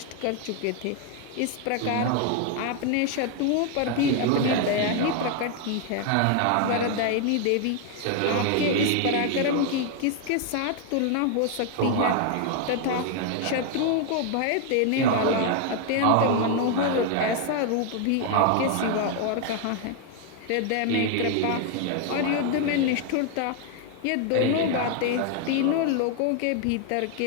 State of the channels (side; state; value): both; different; correlation 0.00